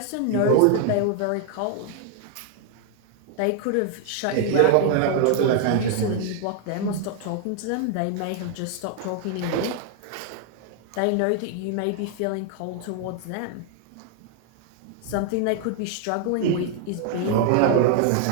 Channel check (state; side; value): different; both; correlation 0.00